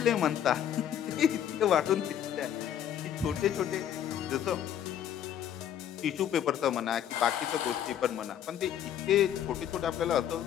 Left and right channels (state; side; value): quieter; right; 10.0 dB